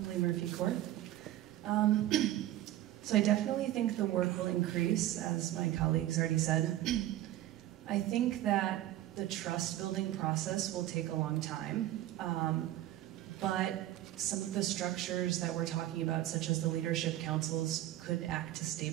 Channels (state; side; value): quieter; left; 14.1 dB